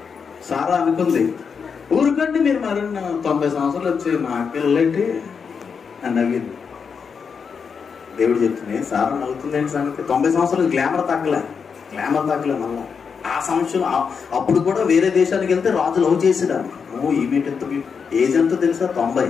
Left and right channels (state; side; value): quieter; right; 6.0 dB